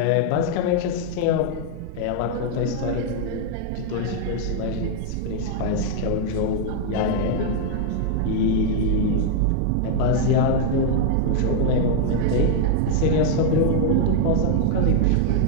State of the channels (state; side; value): different; both; correlation 0.00